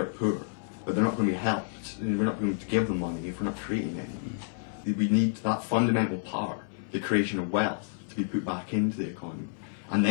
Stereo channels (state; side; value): silent; right; 58 dB below the other